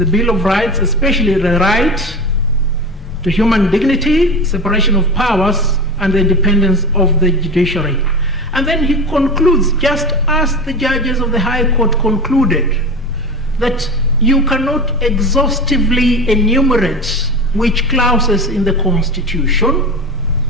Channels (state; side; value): normal; both; correlation 0.29